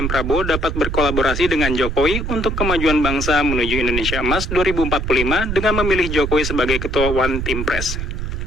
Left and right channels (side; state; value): right; noise; rumble, 3 dB below the sound